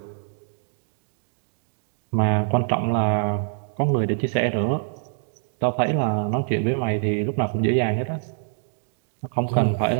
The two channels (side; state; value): left; silent; digital silence